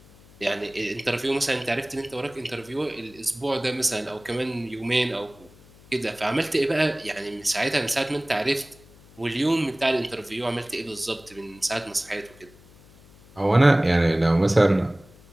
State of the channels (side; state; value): left; noise; hum, 25 dB below the sound